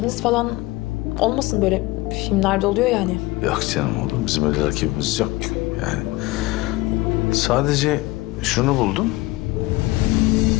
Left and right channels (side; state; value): right; quieter; 20.1 dB